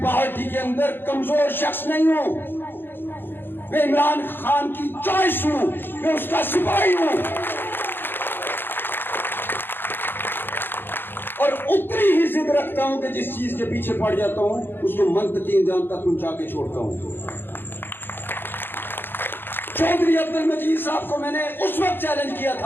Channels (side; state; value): right; late; 0.10 ms